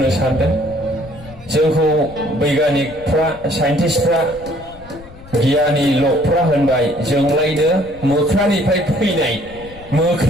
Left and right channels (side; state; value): left; noise; rumble, 19 dB below the sound